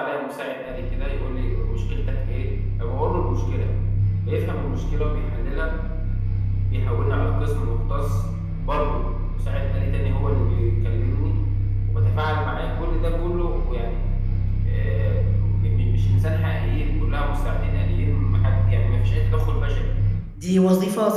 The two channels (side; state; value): both; identical; correlation 1.00